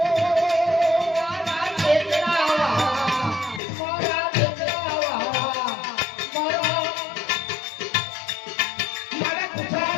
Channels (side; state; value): right; drops out; at 3.6 s